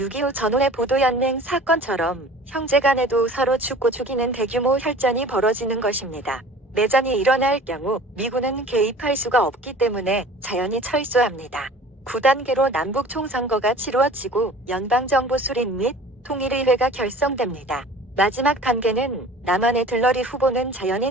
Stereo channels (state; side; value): normal; both; correlation 0.44